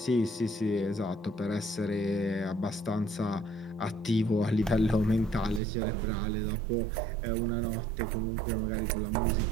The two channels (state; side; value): drops out; left; at 5.6 s